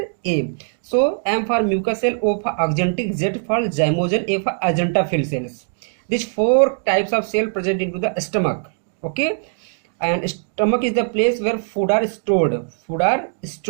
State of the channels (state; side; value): silent; left; digital silence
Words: So M for mucous cell, O for axanthic, Z for zymogen, A for agentophil cells. These 4 types of cell present into the stomach. Okay, and stomach is the place where food are stored.